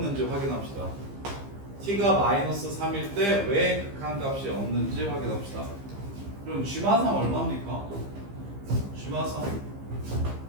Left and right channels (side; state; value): left; late; 15 ms